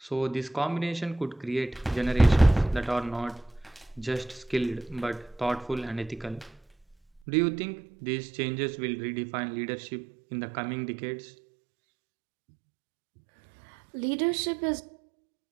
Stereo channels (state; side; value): drops out; left; at 7.2 s